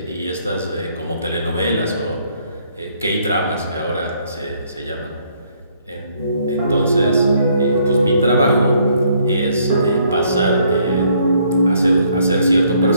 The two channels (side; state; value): both; inverted; correlation -0.67